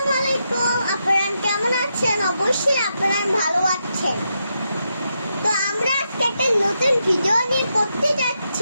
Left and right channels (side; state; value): both; inverted; correlation -0.84